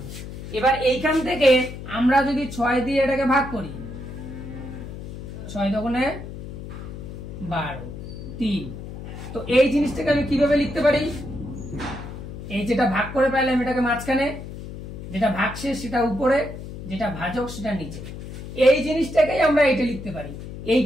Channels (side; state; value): left; noise; hum, 10 dB below the sound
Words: এবার এইখান থেকে আমরা যদি 6 দিয়ে এটাকে ভাগ করি, 6 দুগুণে 12, 3, তো এই জিনিসটাকে আমি কিভাবে লিখতে পারি? এই যেটা ভাগ করে পাইলাম এটাকে মাঝখানে, যেটা ভাগশেষ সেটা উপরে, যেটা ভাজক সেটা নিচে, এই জিনিসটাকেই আমরা এটা লিখতে পারি।